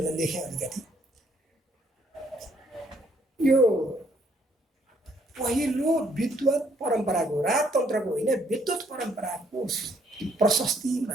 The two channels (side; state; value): both; normal; correlation 0.67